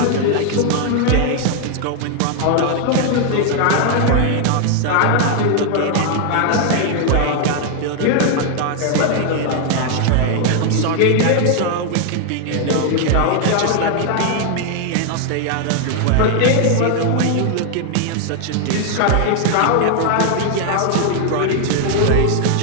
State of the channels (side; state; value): both; different; correlation 0.00